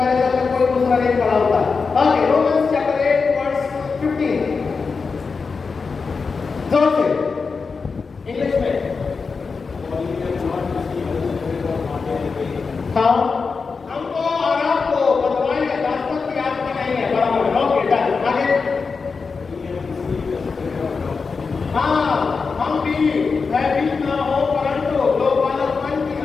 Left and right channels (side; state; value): right; quieter; 4.9 dB